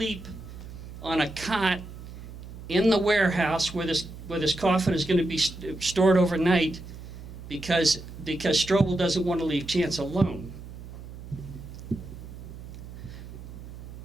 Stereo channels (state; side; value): noise; right; hum, 13 dB below the sound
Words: on a cot in the warehouse where this coffin is going to be stored overnight, because Strobel doesn't want to leave Chance alone.